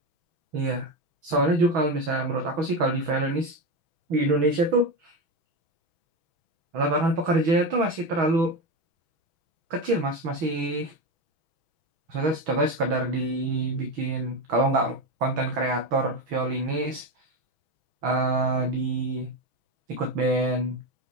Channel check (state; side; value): late; left; 6.2 ms